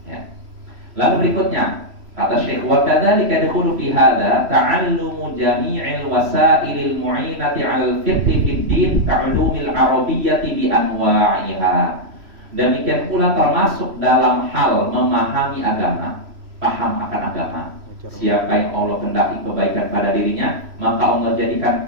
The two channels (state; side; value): late; left; 3.0 ms